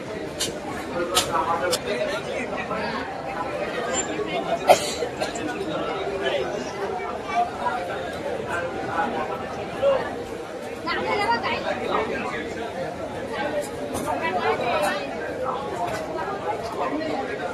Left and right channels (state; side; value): identical; both; correlation 1.00